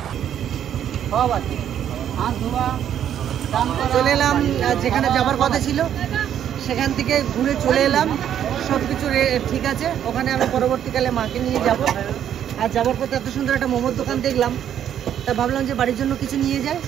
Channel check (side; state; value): left; quieter; 9.9 dB